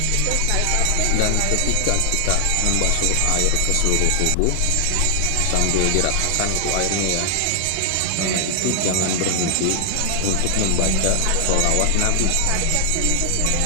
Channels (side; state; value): both; different; correlation 0.00